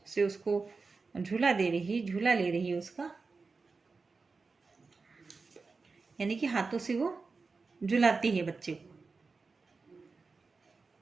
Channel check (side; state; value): left; quieter; 4.3 dB